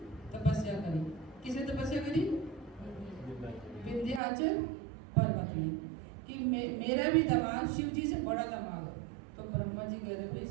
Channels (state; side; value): drops out; left; at 4.2 s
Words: तपस्या करी। किसे तपस्या करी, विंध्याचल पर्वत में, कि मेरा भी दामाद शिव जी से बड़ा दामाद हो। तो ब्रह्मा जी कह रहे भाई